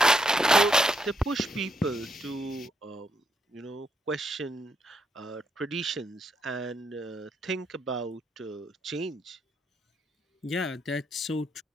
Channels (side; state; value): both; normal; correlation 0.77